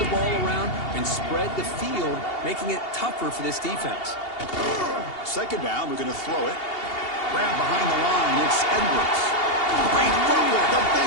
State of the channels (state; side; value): late; right; 2.8 ms